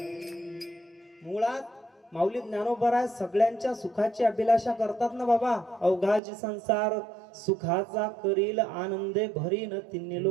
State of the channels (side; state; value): left; drops out; at 6.2 s